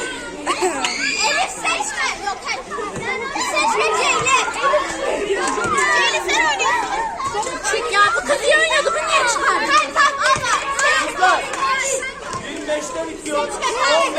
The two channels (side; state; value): both; identical; correlation 1.00